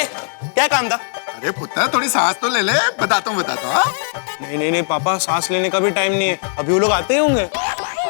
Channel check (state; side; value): silent; right; 57 dB below the other